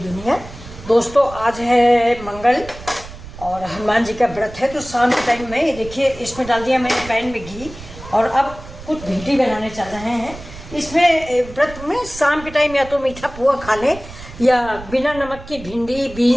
दोस्तों आज है मंगल और हनुमान जी का व्रत है, तो शाम के टाइम में ये देखिए इसमें डाल दिया मैंने पैन में घी और अब कुछ भिंडी बनाने चल रहे हैं। इसमें व्रत में शाम के टाइम या तो मीठा पुआ खा लें या बिना नमक की भिंडी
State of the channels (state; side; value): noise; right; rumble, 15 dB below the sound